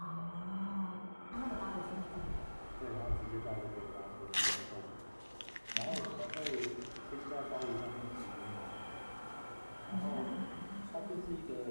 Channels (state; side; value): inverted; both; correlation -1.00